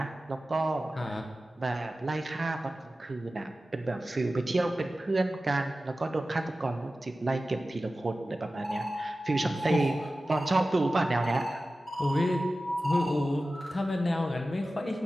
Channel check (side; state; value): both; normal; correlation 0.95